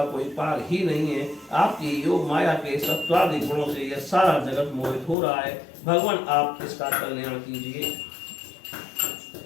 कोई पार ही नहीं है। आपकी योग माया के सत्वादि गुणों से यह सारा जगत मोहित हो रहा है। भगवान आप इसका कल्याण कीजिए।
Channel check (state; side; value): drops out; right; at 5.2 s